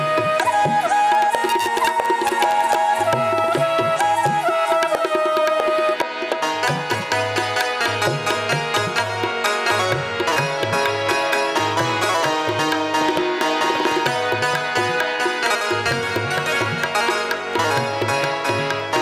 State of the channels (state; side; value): identical; both; correlation 1.00